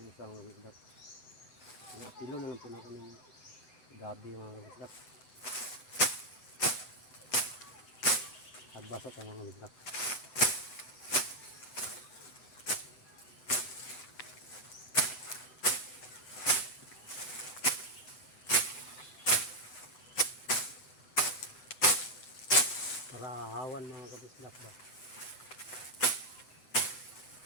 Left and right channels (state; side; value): late; right; 7.9 ms